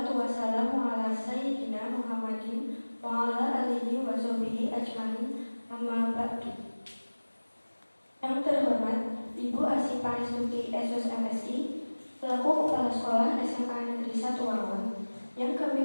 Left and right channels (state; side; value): inverted; both; correlation -1.00